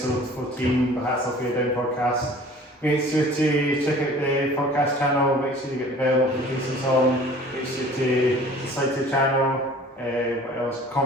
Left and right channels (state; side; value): normal; both; correlation 0.47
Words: 14. The Hats Off Your Down podcast. Make sure to check out the podcast channel. Make sure you get the bell notifications on. Make sure to subscribe to the channel. What else?